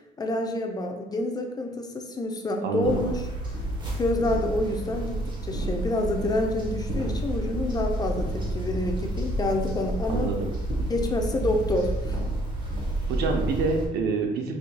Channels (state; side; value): normal; both; correlation 0.63